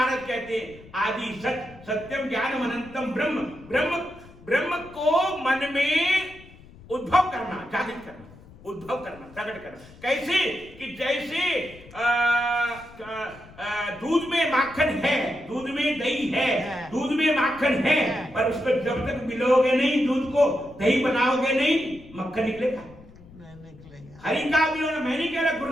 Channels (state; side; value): noise; left; rumble, 21 dB below the sound